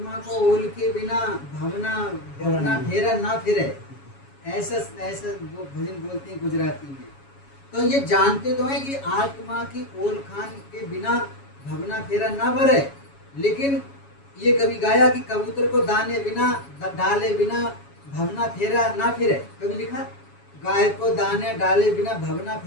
को ओल के बिना भवना फेरा ना फिरे, ऐसा वो भजन बोलते हैं गुजराती में। तो ये जानते तो हैं कि आत्मा की ओल खान के बिना भवना फेरा ना भरे, लेकिन ये कभी गाया कि कबूतर को दाने बिना डाले बिना भवना फेरा ना फिरे, कभी लिखा? गाय को दाने डाले बिना भवना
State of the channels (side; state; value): right; late; 7.2 ms